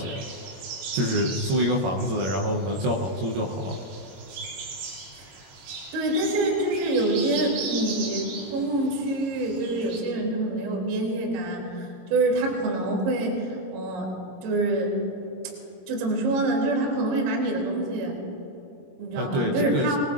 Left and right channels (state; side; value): late; left; 22 ms